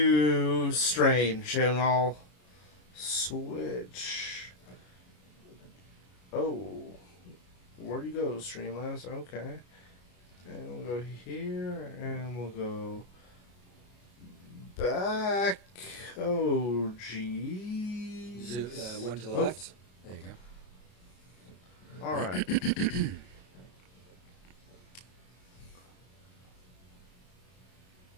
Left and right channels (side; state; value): right; late; 33 ms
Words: Strange. And I'll switch. Oh. Where'd you go, Streamlabs? Okay. And we'll go here. And we'll go back. Oh, geez. One to the left. There you go. All right.